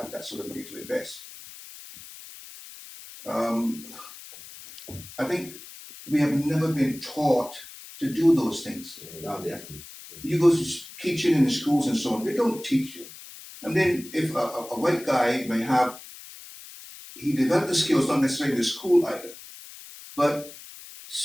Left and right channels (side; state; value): left; noise; hiss, 16 dB below the sound